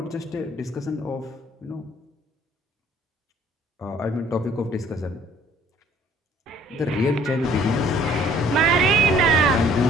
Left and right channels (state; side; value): normal; both; correlation 0.57